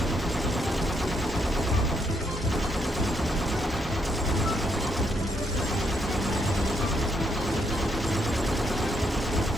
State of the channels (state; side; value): normal; both; correlation 0.76